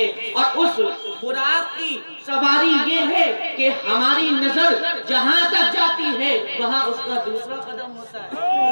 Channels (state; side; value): inverted; both; correlation -1.00